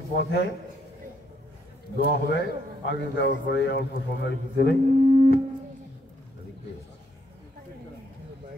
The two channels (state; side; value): normal; both; correlation 0.73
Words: পথে দোয়া হবে। আগে দেওয়ার পরে অল্প সময়ের ভিতরে